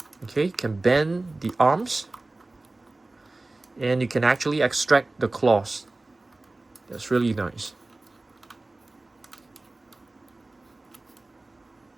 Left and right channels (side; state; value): left; quieter; 3.0 dB